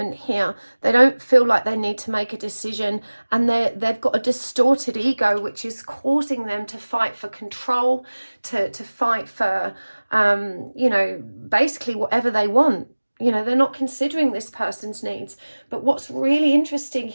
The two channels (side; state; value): both; inverted; correlation -1.00